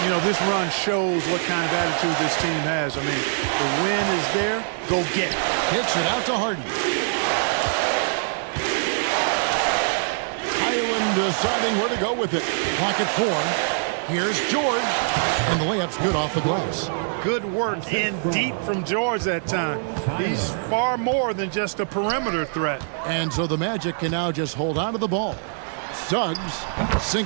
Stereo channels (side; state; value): left; silent; digital silence